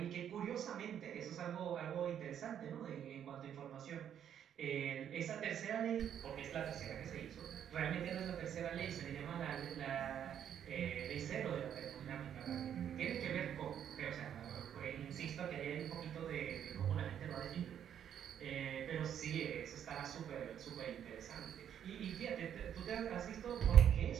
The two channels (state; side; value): quieter; left; 9.4 dB